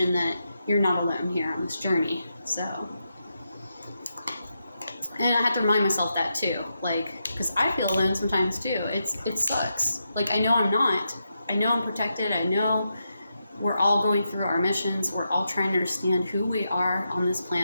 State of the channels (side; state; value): both; inverted; correlation -0.85